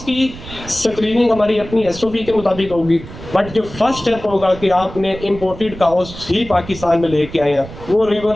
की स्क्रीनिंग हमारी अपनी एसओपी के मुताबिक होगी। बट जो फर्स्ट स्टेप होगा कि आपने इंपोर्टेड काउस ही पाकिस्तान में लेके आए हैं, वो रिवर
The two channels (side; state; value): right; noise; rumble, 14 dB below the sound